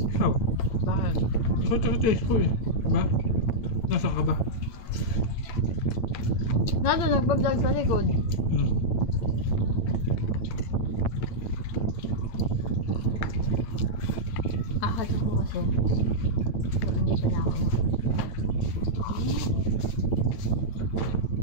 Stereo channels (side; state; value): right; late; 9.0 ms